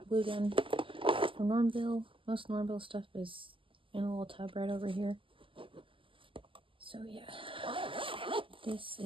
glue gun from Normville. Most Normville stuff is in a little tub right over here. So yeah, this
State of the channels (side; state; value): left; late; 0.25 ms